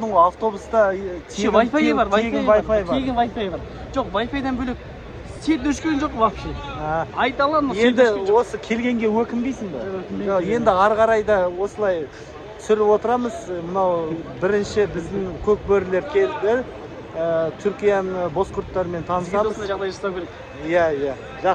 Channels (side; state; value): both; identical; correlation 1.00